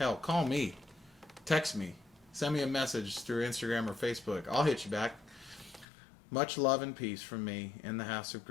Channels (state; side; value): drops out; right; at 5.9 s